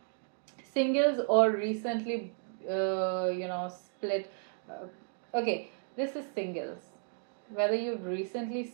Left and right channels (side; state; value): left; silent; digital silence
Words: or recently split. Okay, this is singles, whether you've recently